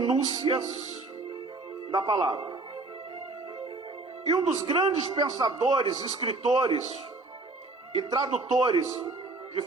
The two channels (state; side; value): quieter; left; 3.4 dB